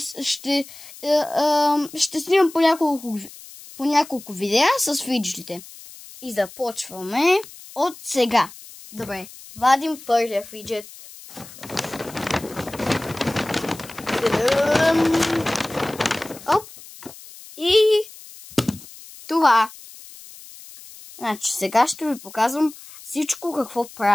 снимам по няколко видеа с фиджетите. И започваме от сега. Добре, вадим първия фиджет. Оп. И това. Значи сега ще ви показвам всичко какво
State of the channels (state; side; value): noise; left; hiss, 18 dB below the sound